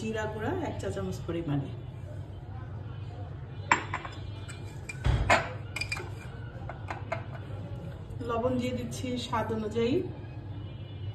গুঁড়া 1 চা চামচ পরিমাণে। লবণ দিয়ে দিচ্ছি স্বাদ অনুযায়ী।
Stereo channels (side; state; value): both; identical; correlation 1.00